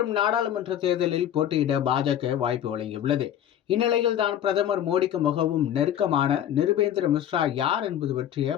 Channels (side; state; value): right; quieter; 10.6 dB